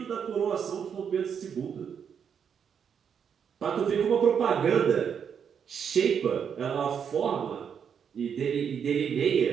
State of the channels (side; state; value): left; quieter; 7.5 dB